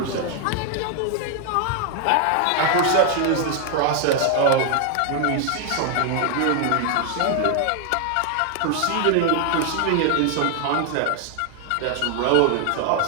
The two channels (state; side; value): different; both; correlation 0.00